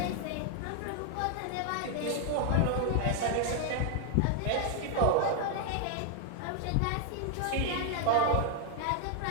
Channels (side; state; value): both; different; correlation 0.00